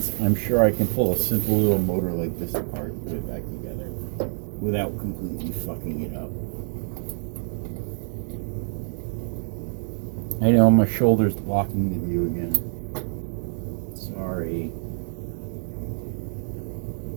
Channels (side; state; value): left; silent; digital silence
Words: I'm sure I can pull a simple little motor like this apart and put it back together without completely fucking it up. I know my shoulder's blocking the view again. Sorry.